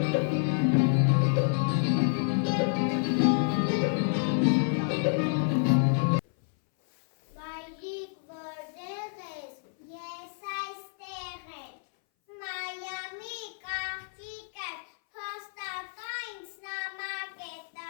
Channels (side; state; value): right; silent; 58 dB below the other